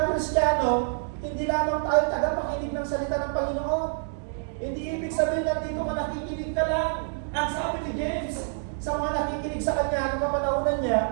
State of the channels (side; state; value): left; silent; digital silence